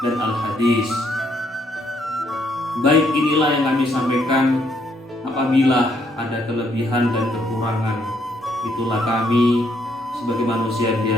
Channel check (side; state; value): both; normal; correlation 0.71